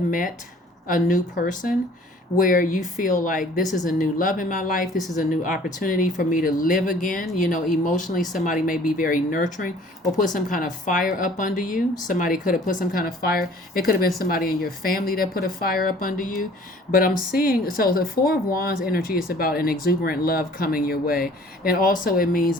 met a new person where you feel like this is a new love in my life, this is a new opportunity for me to live again. You know, emotionally somebody may be very nurturing or put some kind of fire up under you. Somebody could have put some kind of fire. It could have been somebody in your family that put a fire up under you. But I'm seeing, so the Four of Wands energy is about an exuberant love coming your way, and also it means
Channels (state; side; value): normal; both; correlation 0.52